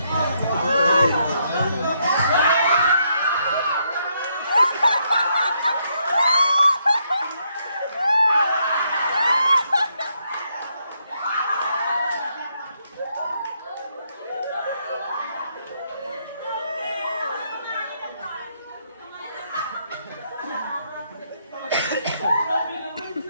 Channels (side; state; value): both; inverted; correlation -0.75